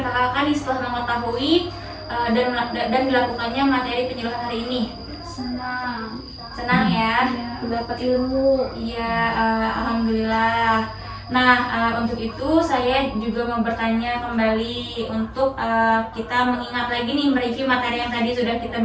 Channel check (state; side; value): identical; both; correlation 1.00